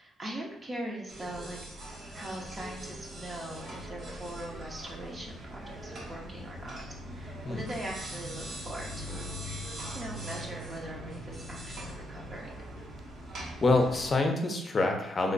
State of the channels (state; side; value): normal; both; correlation 0.79